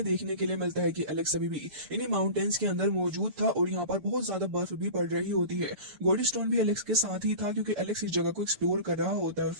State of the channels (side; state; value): left; late; 6.9 ms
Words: देखने के लिए मिलता है कि एलेक्स अभी भी इन्हीं माउंटेन्स के अंदर मौजूद था और यहाँ पर बहुत ज्यादा बर्फ भी पड़ रही होती है। गोल्ड स्टोन भी एलेक्स के साथ ही था क्योंकि एलेक्स इस जगह को एक्सप्लोर कर रहा होता है और